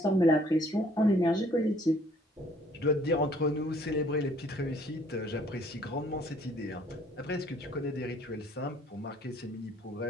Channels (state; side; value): normal; both; correlation 0.60